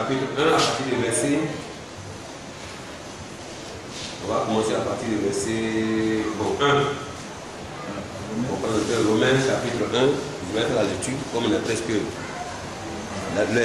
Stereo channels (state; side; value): identical; both; correlation 1.00